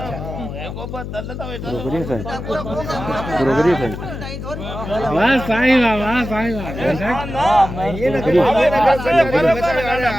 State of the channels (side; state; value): left; noise; hum, 8 dB below the sound